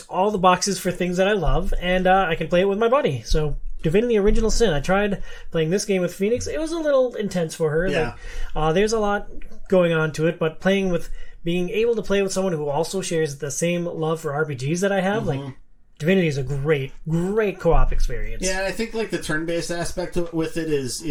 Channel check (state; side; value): identical; both; correlation 1.00